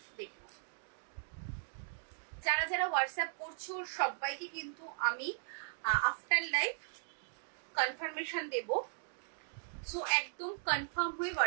যারা যারা হোয়াটসঅ্যাপ করছো সবাইকে কিন্তু আমি আফটার লাইভ কনফার্মেশন দেব। সো একদম কনফার্ম হয়ে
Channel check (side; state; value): left; silent; digital silence